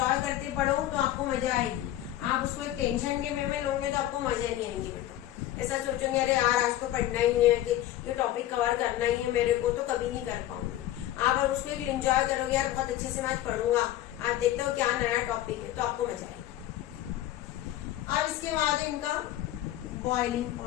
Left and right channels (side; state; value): right; quieter; 13.6 dB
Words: करते पढ़ो तो आपको मजा आएगी। आप उसको एक टेंशन के वे में लोगे तो आपको मजा ही नहीं आएगी बेटा। ऐसा सोचोगे अरे यार आज तो पढ़ना ही है, कि ये टॉपिक कवर करना ही है मेरे को, तो कभी नहीं कर पाऊंगी। आप अगर उसको एक एंजॉय करोगे, यार बहुत अच्छे से मैं पढ़ूंगा, आप देखते हो क्या नया टॉपिक है, तो आपको मजा आएगी। अब इसके बाद इनका बॉइलिंग